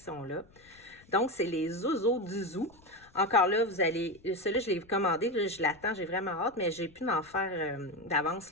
Donc, c'est les Zozo du Zoo. Encore là, vous allez... Celui-là, je l'ai commandé, là, je l'attends, j'ai vraiment hâte, mais j'ai pu m'en faire d'avance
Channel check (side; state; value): left; noise; rumble, 27 dB below the sound